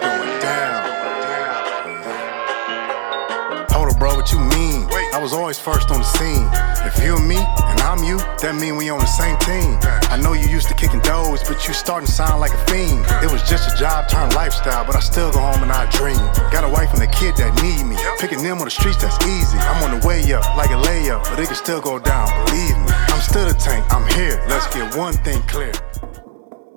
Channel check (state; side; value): silent; left; digital silence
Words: down. Hold up, bro, what you mean? I was always first on the scene. If you and me, and I'm you, that mean we on the same team. I know you used to kicking doors, but you starting to sound like a fiend. It was just a job turned lifestyle, but I still go home and I dream. Got a wife and a kid that need me. Picking them on the streets, that's easy. I'm on the way up, like a layup, but it can still go down, believe me. I'm still the tank, I'm here. Let's get one thing clear.